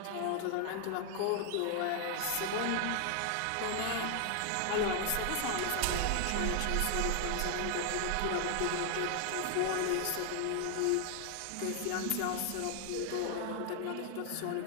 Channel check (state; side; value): different; both; correlation 0.00